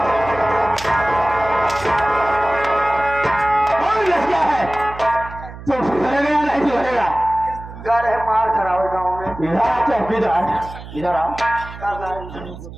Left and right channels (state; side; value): noise; right; hum, 14 dB below the sound